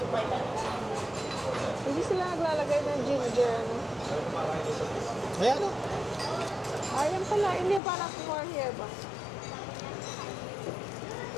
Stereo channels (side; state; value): right; drops out; at 7.8 s